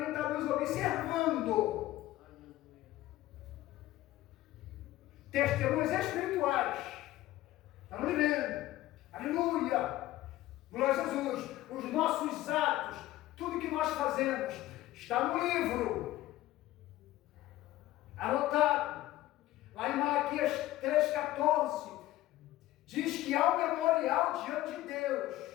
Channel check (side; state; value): right; quieter; 15.8 dB